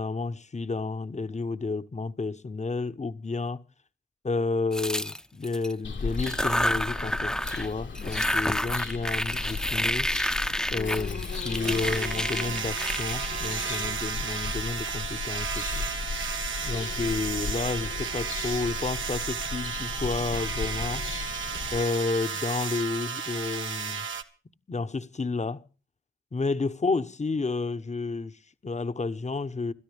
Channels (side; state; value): both; normal; correlation 0.61